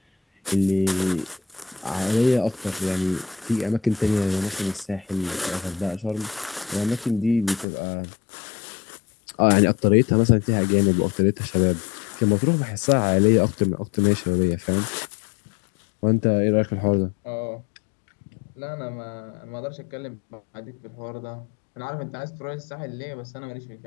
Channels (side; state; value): right; drops out; at 7.7 s